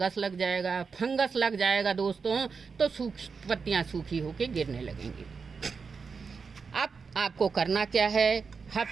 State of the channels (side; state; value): left; quieter; 5.3 dB